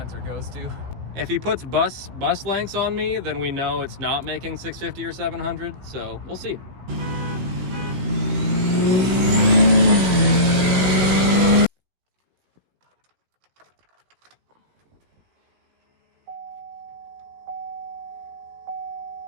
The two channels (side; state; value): left; late; 16 ms